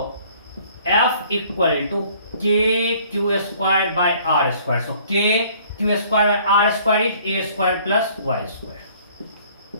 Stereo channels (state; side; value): inverted; both; correlation -0.57